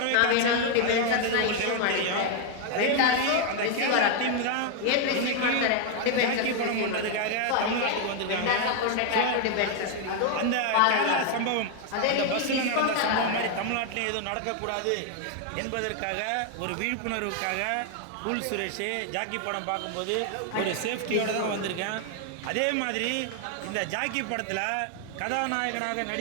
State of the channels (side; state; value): both; different; correlation 0.01